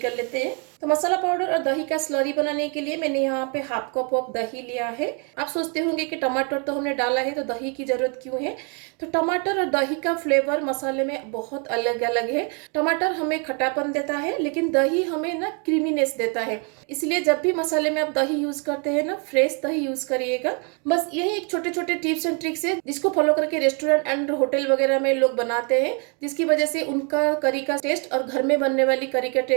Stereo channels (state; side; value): quieter; left; 36.4 dB